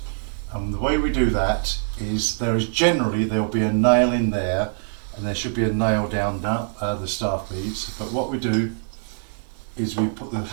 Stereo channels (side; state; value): left; silent; digital silence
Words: and the way we do that is there'll be a nail in there, and there should be a nail down the staff beads. But what we do is we put the